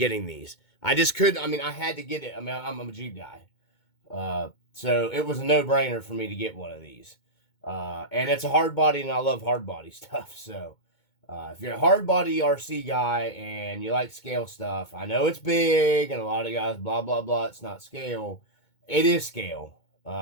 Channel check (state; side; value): late; right; 2.2 ms